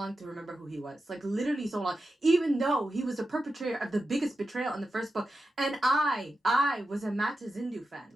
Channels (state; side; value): normal; both; correlation 0.90